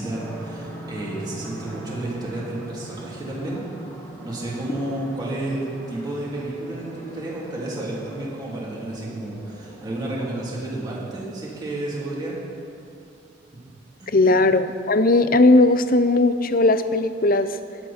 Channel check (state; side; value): normal; both; correlation 0.42